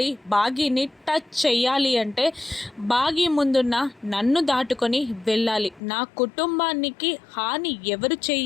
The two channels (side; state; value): right; drops out; at 5.8 s